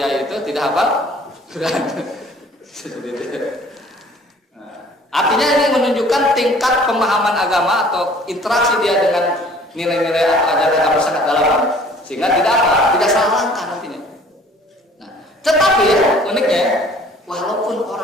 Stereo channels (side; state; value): both; normal; correlation 0.53